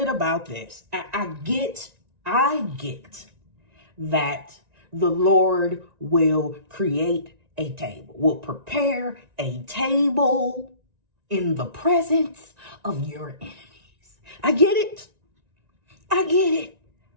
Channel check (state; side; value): late; left; 1.9 ms